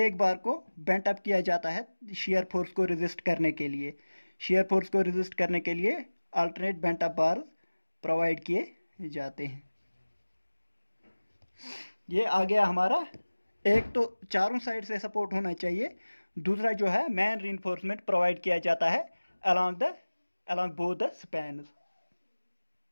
बार को बेंट अप किया जाता है शियर फोर्स को रेजिस्ट करने के लिए। शियर फोर्स को रेजिस्ट करने के लिए alternate bent up bars provide किए जाते हैं। ये आ गया हमारा, एक तो चारों साइड से सपोर्ट होना चाहिए, दूसरा जो है मैन रीइंफोर्समेंट प्रोवाइड किया जाता है along both the spans।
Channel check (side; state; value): both; inverted; correlation -1.00